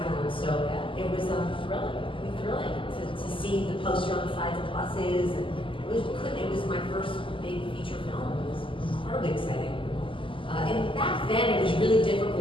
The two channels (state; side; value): late; right; 0.25 ms